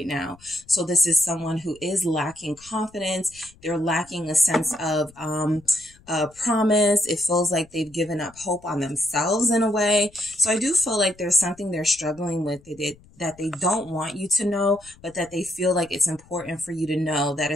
now. So this is someone who is lacking confidence. They're lacking a sense of promise. It feels like they've given up hope on themselves in a way. So I do feel like there's something they're struggling with that they don't want you to know, but that they feel like it's important for you to know. That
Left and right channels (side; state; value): left; noise; rumble, 26 dB below the sound